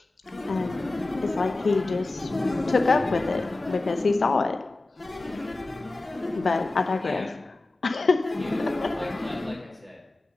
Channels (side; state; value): right; quieter; 3.1 dB